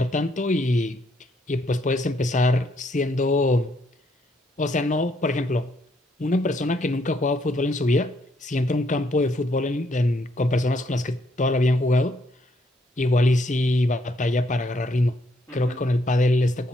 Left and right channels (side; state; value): both; normal; correlation 0.72